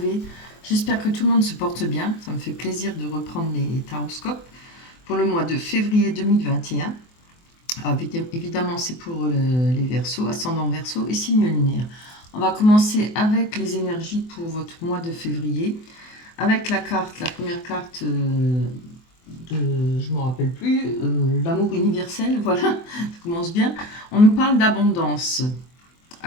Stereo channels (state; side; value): late; right; 24 ms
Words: J'espère que tout le monde se porte bien. Ça me fait plaisir de reprendre les taroscopes pour le mois de février 2021. Alors, évidemment, c'est pour les Verseaux, ascendant Verseau et signe lunaire. On va commencer avec les énergies pour votre mois de février. Avec la première carte je ne me rappelle plus, l'amour universel, voilà, ça commence bien. On nous parle d'abondance.